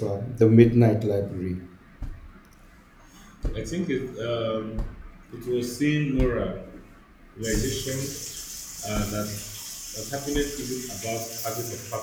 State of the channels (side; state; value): both; identical; correlation 1.00